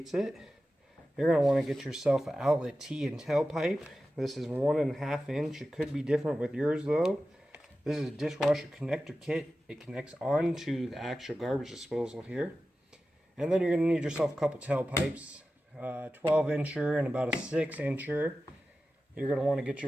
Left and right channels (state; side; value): normal; both; correlation 0.94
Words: it. You're going to want to get yourself an outlet T and tailpipe. This is 1.5 inch. It could be different with yours though. This is a dishwasher connector kit. It connects onto the actual garbage disposal here. And then you're going to need yourself a couple tailpipes, 12 incher and about a 6 incher. You're going to want to get